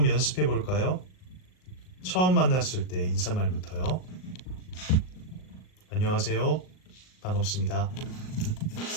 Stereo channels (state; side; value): late; right; 38 ms